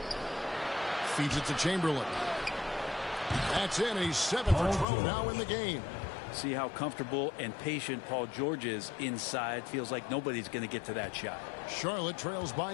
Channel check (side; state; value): right; drops out; at 4.9 s